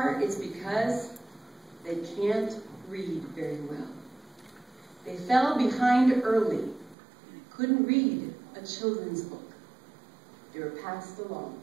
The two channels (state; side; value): drops out; left; at 7.0 s